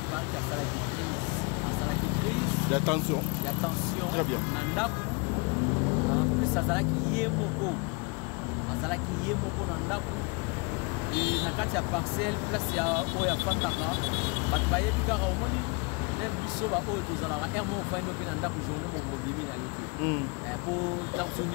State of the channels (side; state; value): right; quieter; 30.2 dB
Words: asalaki crise ya tension très bien na ndako plus azalaki ye moko na ndako na kati ya parcelle place ya oyo afandaka bato bayebi kaka omoni même biso baoyo tozalaka aire moko ofandi mpe na ndako journée mokobimi na ye te mpo tension